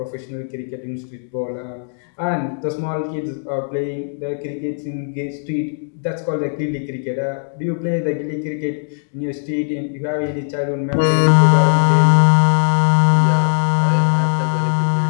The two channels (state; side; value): silent; right; digital silence